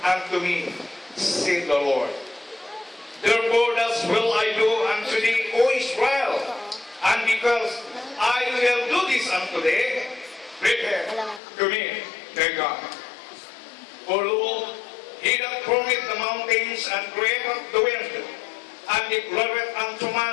unto me, said the Lord. Therefore thus will I do unto thee, O Israel, and because I will do this unto thee, prepare to me, thy God. For lo, He that formeth the mountains and createth the wind, and declareth unto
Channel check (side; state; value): right; drops out; at 11.4 s